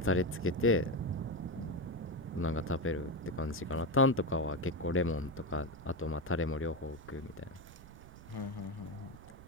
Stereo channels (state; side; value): noise; right; rumble, 17 dB below the sound